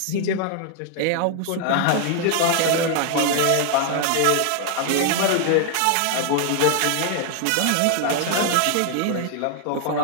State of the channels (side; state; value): both; different; correlation 0.00